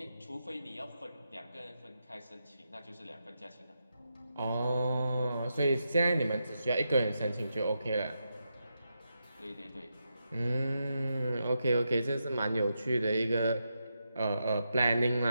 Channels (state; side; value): inverted; both; correlation -0.86